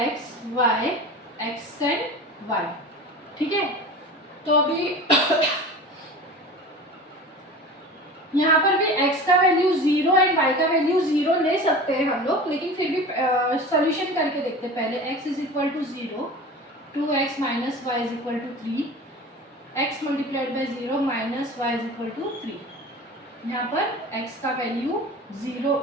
y x and y, ठीक है। तो अभी यहाँ पर भी x का वैल्यू 0 एंड y का वैल्यू 0 ले सकते हैं हम लोग, लेकिन फिर भी सॉल्यूशन करके देखते हैं। पहले x is equal to 0, 2x minus y is equal to 3, x multiplied by 0 minus y is equal to 3। यहाँ पर x का वैल्यू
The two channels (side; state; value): both; normal; correlation 0.35